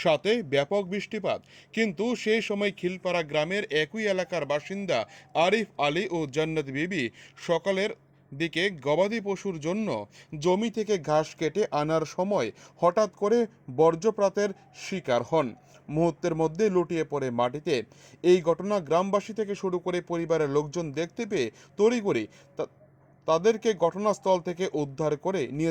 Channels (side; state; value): both; identical; correlation 1.00